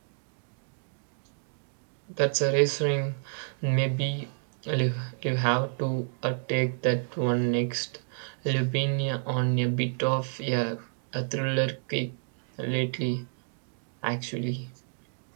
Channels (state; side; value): silent; left; 58 dB below the other